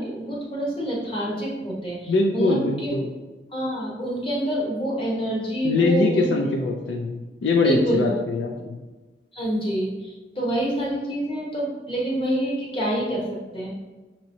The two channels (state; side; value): normal; both; correlation 0.62